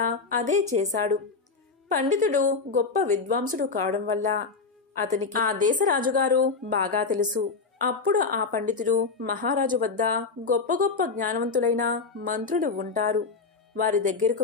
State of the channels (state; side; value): quieter; right; 4.6 dB